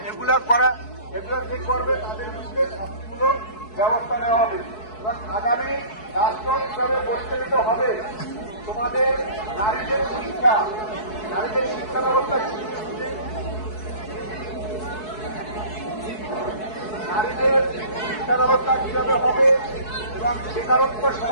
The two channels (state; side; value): late; right; 4.7 ms